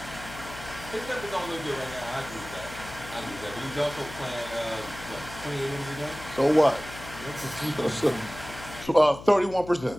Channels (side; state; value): left; noise; hum, 14 dB below the sound